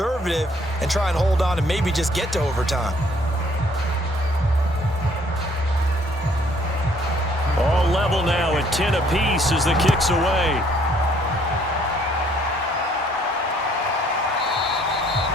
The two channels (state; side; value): normal; both; correlation 0.63